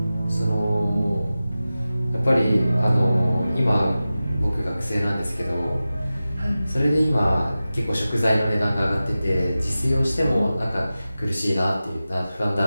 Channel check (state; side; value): inverted; both; correlation -0.95